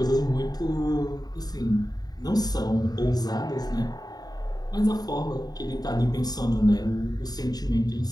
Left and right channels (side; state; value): right; late; 0.19 ms